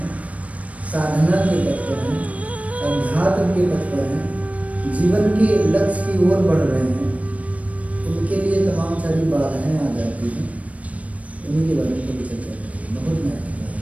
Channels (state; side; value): late; left; 0.067 ms